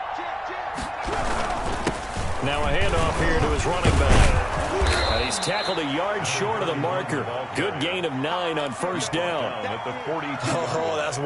Now a handoff here to his running back. And he's tackled a yard short of the marker. Good gain of 9 on first down. Oh, that's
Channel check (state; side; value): identical; both; correlation 1.00